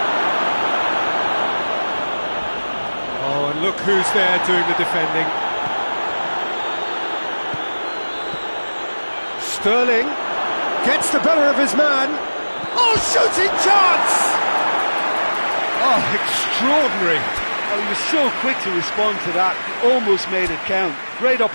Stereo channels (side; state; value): both; inverted; correlation -1.00